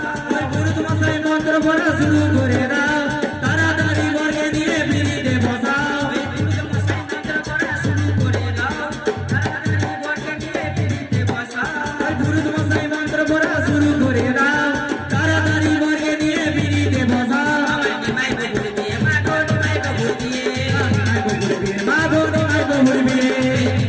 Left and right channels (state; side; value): identical; both; correlation 1.00